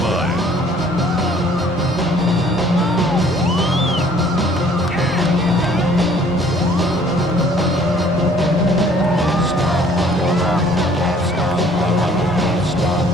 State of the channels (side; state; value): both; normal; correlation 0.57